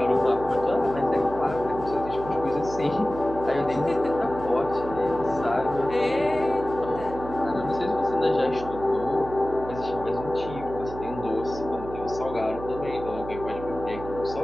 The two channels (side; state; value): right; noise; hum, 11 dB below the sound